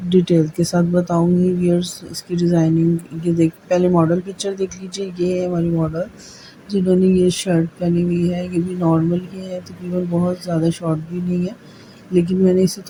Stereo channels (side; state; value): both; identical; correlation 1.00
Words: डिटेल के साथ बताऊंगी व्यूअर्स। इसकी डिज़ाइनिंग ये देख, पहले मॉडल पिक्चर देख लीजिए। ये है हमारी मॉडल जिन्होंने ये शर्ट पहनी हुई है। ये भी नॉर्मल ही है, तकरीबन बहुत ज़्यादा शॉर्ट भी नहीं है, लेकिन मैंने इसे